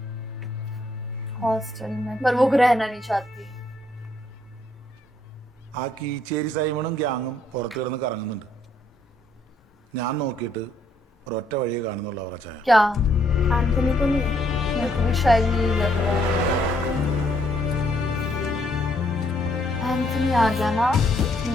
हॉस्टल में, पर वो रहना नहीं चाहती। ആ കീച്ചേരി സൈമണും ഗ്യാങ്ങും പുറത്തു കിടന്ന് കറങ്ങുന്നുണ്ട്. ഞാൻ നോക്കിയിട്ട് ഒരൊറ്റ വഴിയെ കാണുന്നുള്ളൂ അവറച്ചായ. क्या? एंथनी को नहीं है। मेरे को भी शायद यही लग रहा है। एंथनी आ गया ना।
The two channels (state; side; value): normal; both; correlation 0.69